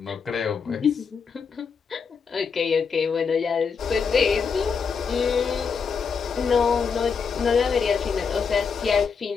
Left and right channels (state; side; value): quieter; right; 5.8 dB